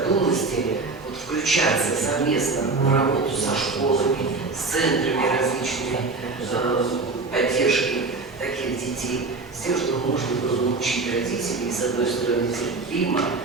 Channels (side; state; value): left; quieter; 3.8 dB